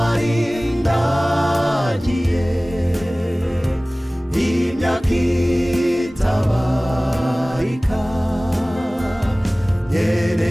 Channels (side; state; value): both; normal; correlation 0.98